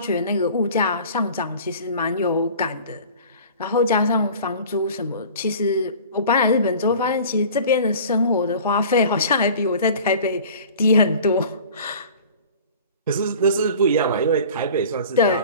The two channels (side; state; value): both; inverted; correlation -0.43